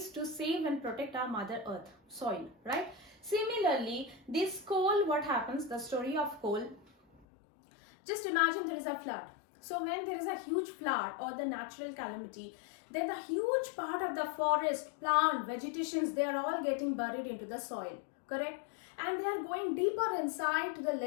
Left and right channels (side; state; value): right; drops out; at 7.2 s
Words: to save and protect our mother earth, soil, right? Similarly, this coal, what happens, the story of coal, just imagine there is a flood. So when there is a huge flood or the natural calamity, then the huge part of the forest, plant, vegetations, they are all getting buried into the soil, correct? And they are going deeper inside to the